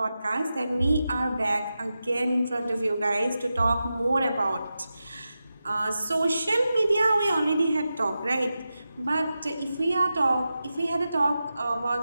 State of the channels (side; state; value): both; inverted; correlation -0.91